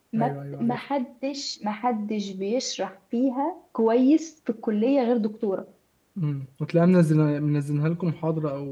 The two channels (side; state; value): both; identical; correlation 1.00